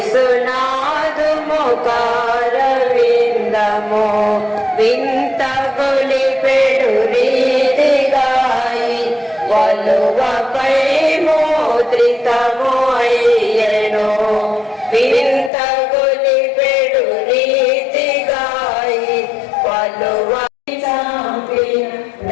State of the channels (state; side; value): drops out; right; at 15.5 s